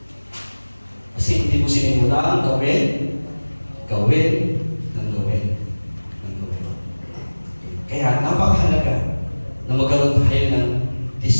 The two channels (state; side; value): inverted; both; correlation -1.00